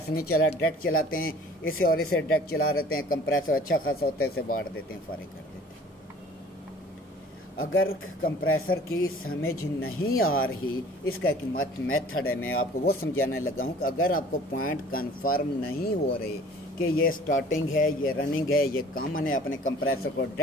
नहीं चला डायरेक्ट चलाते हैं, इसे और इसे डायरेक्ट चला रहते हैं। कंप्रेसर अच्छा खासा होता है, इसे बांट देते हैं, फारिग कर देते हैं। अगर कंप्रेसर की समझ नहीं आ रही, इसका एक मेथड है, मैं आपको वो समझाने लगा हूँ कि अगर आपको पॉइंट कन्फर्म नहीं हो रहे कि ये स्टार्टिंग है, ये रनिंग है, ये कॉमन है, अपने कंप्रेसर को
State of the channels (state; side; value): normal; both; correlation 0.50